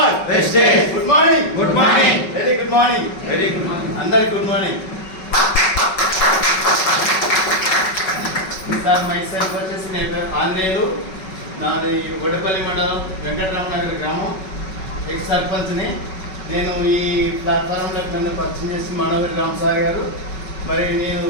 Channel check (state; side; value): late; right; 5.3 ms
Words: wastage. Good morning, good morning, very good morning, very good morning. అందరికి good morning. Sir myself వచ్చేసి నేను ఆంధ్రేయులు, నాది వడపల్లి మండలం వెంకటరామ నగర్ గ్రామం, ఎక్స్ సర్పంచ్ని. నేను ఈ ప్లాట్ఫామ్లో నన్ను పరిచయం చేసి మనోహరి రామ్ సార్ గారు. మరి నేను